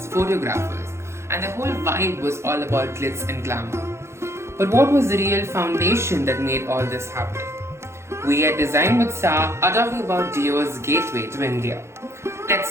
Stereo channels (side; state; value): left; late; 0.13 ms